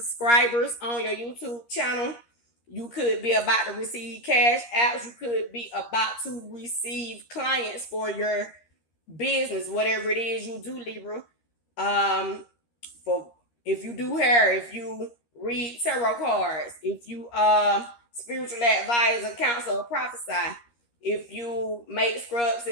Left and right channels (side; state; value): right; late; 13 ms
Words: on your YouTube channel. You could be about to receive cash apps. You could be about to receive clients for your business, whatever it is you do, Libra. For if you do hair, if you read tarot cards, if you spiritual advisor, counsel, or prophesy, if you make scrubs